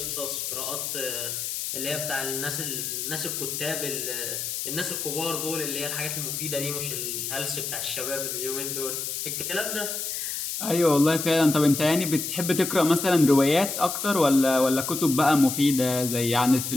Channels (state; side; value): noise; left; hiss, 4 dB below the sound